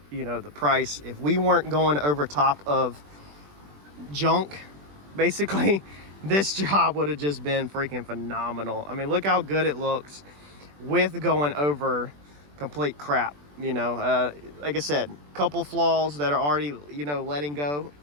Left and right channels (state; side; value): late; left; 20 ms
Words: you know, the price. If we weren't going over top of junk, basically, this job would have just been freaking phenomenal. I mean, look how good it looks with going over complete crap. You know, like I said, couple flaws that are already, you know, letting go